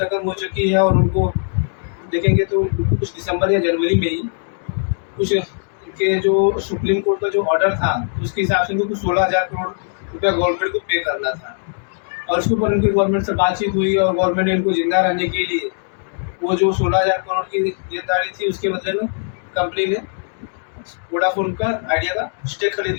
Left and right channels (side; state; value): right; silent; digital silence